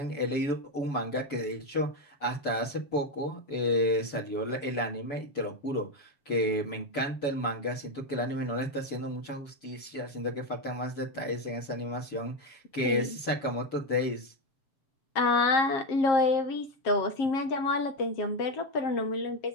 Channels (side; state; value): right; late; 7.0 ms